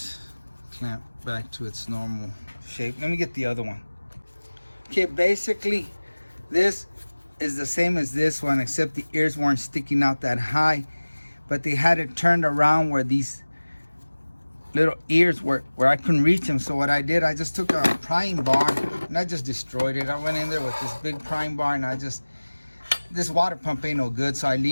clamp back to its normal shape. Let me get the other one. Okay, basically this is the same as this one, except the ears weren't sticking out that high, but they had it turned around where these little ears were, where I couldn't reach them. So what I did, I just took a prying bar and I just destroyed it. I went in there with this big prying bar and this water pump ain't no good, so I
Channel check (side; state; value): both; inverted; correlation -1.00